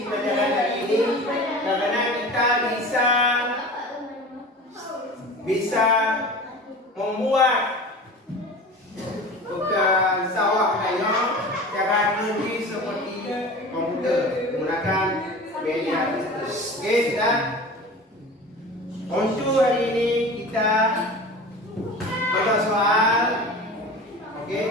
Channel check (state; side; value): normal; both; correlation 0.36